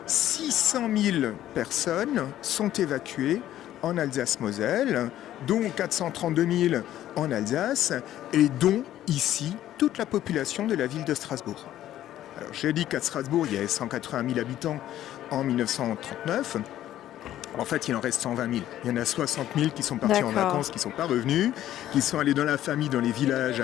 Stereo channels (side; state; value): right; quieter; 12.7 dB